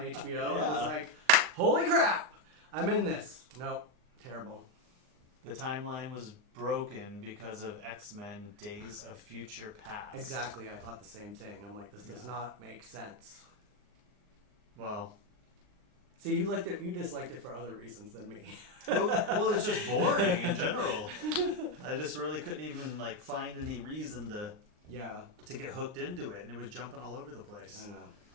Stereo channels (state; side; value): late; left; 39 ms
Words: HBO? Yeah. I was like, holy crap! I'm in this. Nope. Terrible. The timeline was broken because of X-Men Days of Future Past. Exactly. I thought the same thing. I'm like, this does not make sense. Well... See, you liked it. You disliked it for other reasons than me. well, it's just boring in general. I just really couldn't even like find any reason to get hooked into it, and it was jumping all over the place. I know.